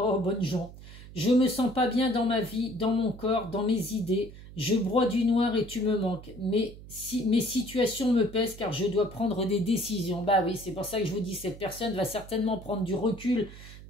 bonne gens. Je me sens pas bien dans ma vie, dans mon corps, dans mes idées. Je broie du noir et tu me manques. Mais mes situations me pèsent car je dois prendre des décisions. Bah oui, c'est pour ça que je vous dis, cette personne va certainement prendre du recul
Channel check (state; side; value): noise; right; hum, 16 dB below the sound